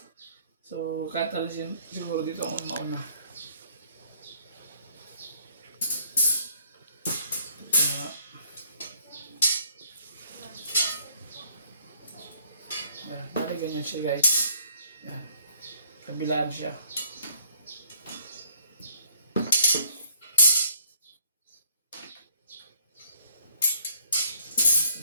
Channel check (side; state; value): both; inverted; correlation -0.62